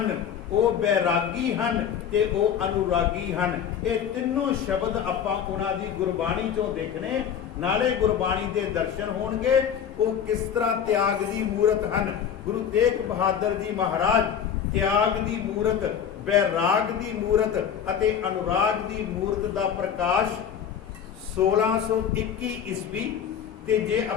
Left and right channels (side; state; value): right; quieter; 8.3 dB